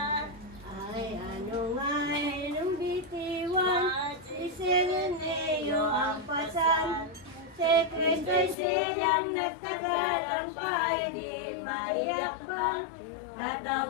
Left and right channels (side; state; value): right; drops out; at 8.6 s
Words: Ay ano may lumbitiwan, isininyo ang pasan. Si Kristo'y siyang nagtagalang pa, di maiyak pa.